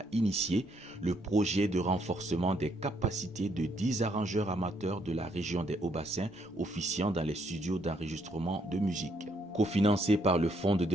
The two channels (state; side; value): normal; both; correlation 0.71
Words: initié le projet de renforcement des capacités de 10 arrangeurs amateurs de la région des Hauts-Bassins officiant dans les studios d'enregistrement de musique. Cofinancé par le Fonds de